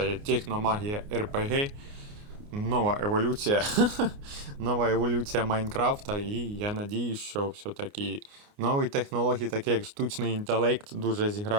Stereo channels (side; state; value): left; late; 29 ms